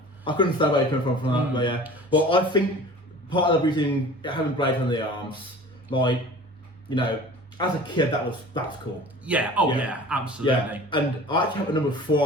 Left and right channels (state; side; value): normal; both; correlation 0.42